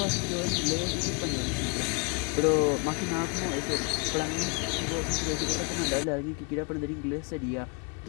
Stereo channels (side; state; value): right; quieter; 33.0 dB